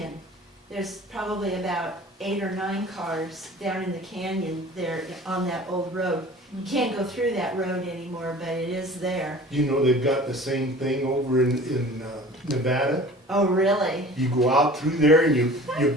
There's probably about 8 or 9 cars down in the canyon there on that old road. You can't go through that road anymore, but it is there. You know, they've got the same thing over in Nevada. Oh, really? You go out through there and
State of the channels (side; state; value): both; normal; correlation 0.44